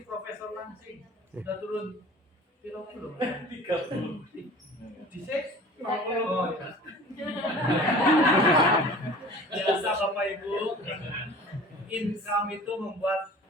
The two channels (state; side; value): normal; both; correlation 0.43